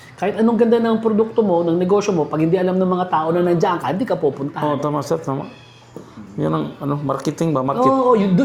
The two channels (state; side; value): identical; both; correlation 1.00